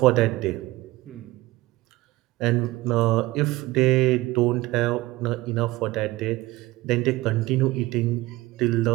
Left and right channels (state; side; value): quieter; left; 19.3 dB